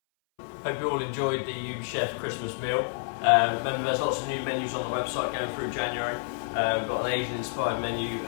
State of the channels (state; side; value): silent; right; 58 dB below the other